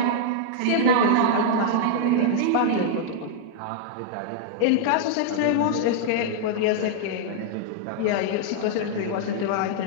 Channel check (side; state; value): both; different; correlation -0.01